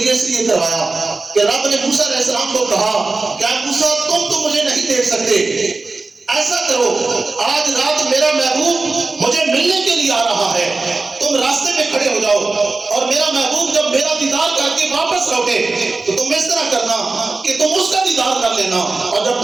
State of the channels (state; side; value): quieter; left; 3.6 dB